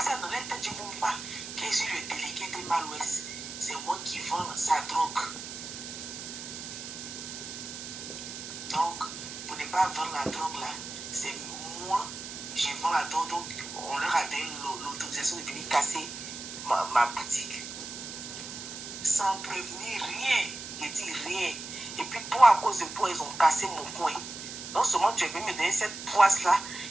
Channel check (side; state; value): right; noise; hiss, 9 dB below the sound